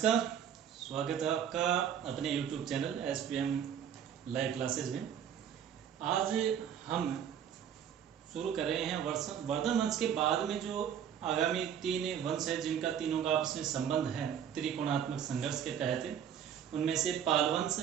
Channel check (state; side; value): quieter; left; 8.8 dB